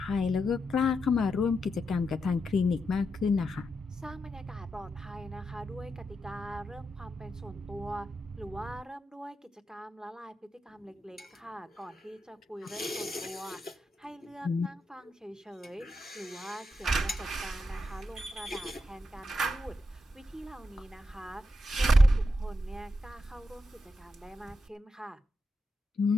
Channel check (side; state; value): both; normal; correlation 0.85